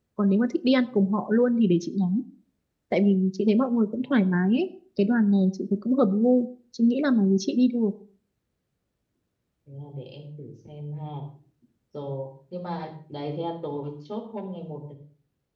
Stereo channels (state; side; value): identical; both; correlation 1.00